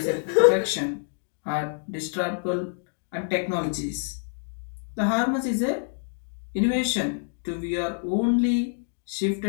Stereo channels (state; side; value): silent; right; digital silence